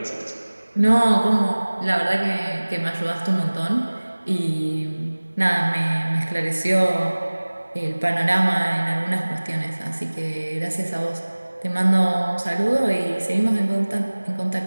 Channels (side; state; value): both; inverted; correlation -1.00